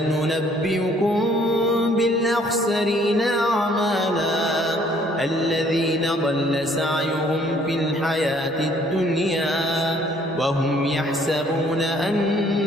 ننبئكم بالأخسرين أعمالا الذين ضل سعيهم في الحياة الدنيا وهم يحسبون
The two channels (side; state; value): both; normal; correlation 0.61